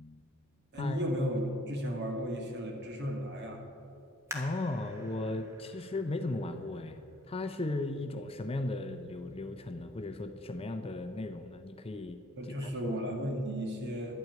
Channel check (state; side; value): normal; both; correlation 0.62